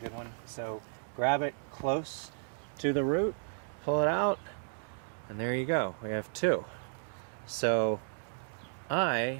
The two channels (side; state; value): left; silent; digital silence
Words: one. So grab it close to the root, pull it out, and there you go. We have two. So